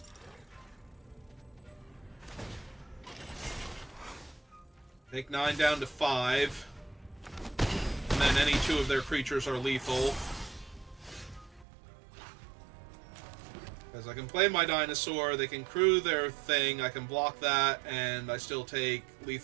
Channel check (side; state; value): left; drops out; at 11.7 s